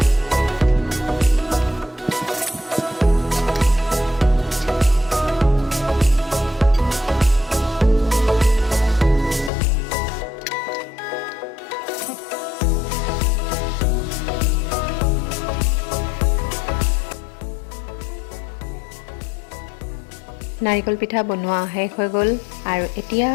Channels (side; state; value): right; drops out; at 9.5 s